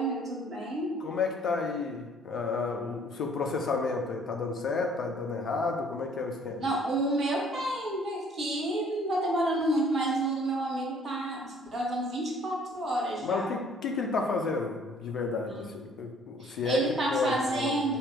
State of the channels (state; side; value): normal; both; correlation 0.57